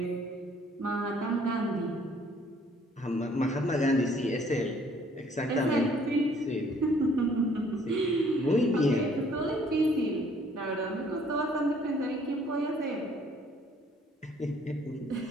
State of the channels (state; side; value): normal; both; correlation 0.60